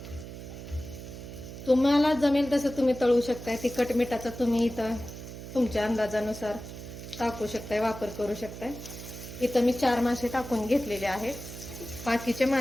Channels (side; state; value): right; noise; hum, 11 dB below the sound